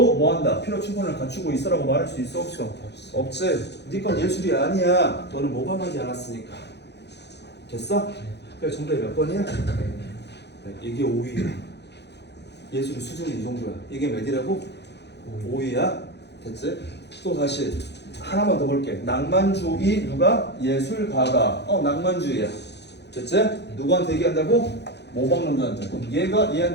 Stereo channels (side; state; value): right; late; 0.50 ms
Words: 뭐한다? 필요 충분을 갖추고 있어라고 말할 수 있어 없어? 없지. 네 건 예술이 아니야. 너는 모방하지 않았으니까. 됐어? 그래 정답이 몇 번이야? 이게 5위야. 예술의 수준이 이 정도야. 이게 몇이라고? 5위야. 됐지? 또 다시 하나만 더 볼게. 낭만주의 누가? 예술가가. 낭만주의야. 됐지? 누구한테 얘기한다고? 모방론자한테. 그럼 얘가